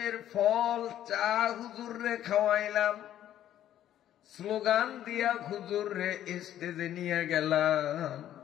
ফল চা হুজুর রে খাওয়াইলাম, স্লোগান দিয়া হুজুর রে স্টেজে নিয়ে গেলাম।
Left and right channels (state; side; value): quieter; right; 11.7 dB